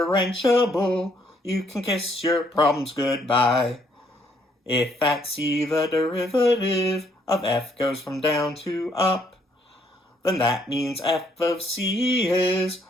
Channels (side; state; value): both; normal; correlation 0.69